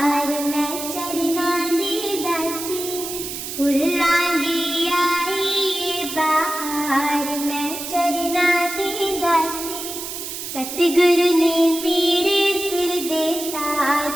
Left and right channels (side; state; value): right; noise; hiss, 7 dB below the sound